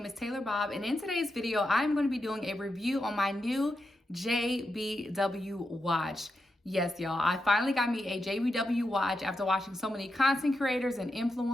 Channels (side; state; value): both; normal; correlation 0.87